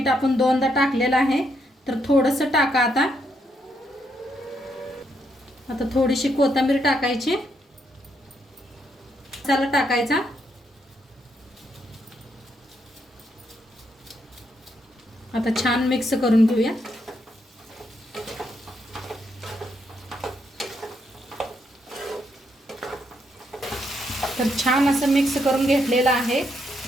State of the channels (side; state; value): both; normal; correlation 0.77